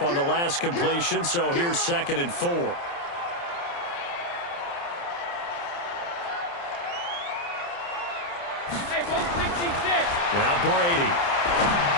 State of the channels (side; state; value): right; late; 29 ms